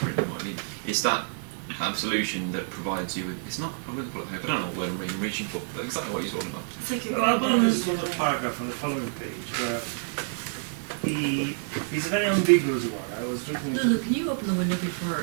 written what I mean. It's that absolution that provides you with. It's not. I wouldn't call it hope. I don't know what word I'm reaching for, but exactly what he's talking about. Well, there's a little paragraph on the following page where he's a very ambiguous one. I was reading it. Lulu, can you open the window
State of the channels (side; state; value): left; silent; digital silence